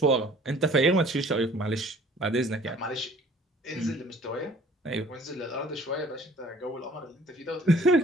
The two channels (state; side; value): normal; both; correlation 0.54